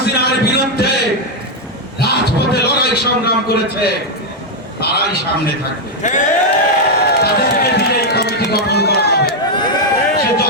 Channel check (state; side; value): normal; both; correlation 0.01